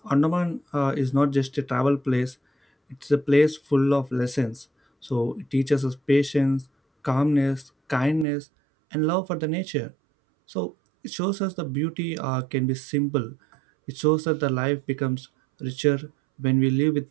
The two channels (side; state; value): left; drops out; at 8.2 s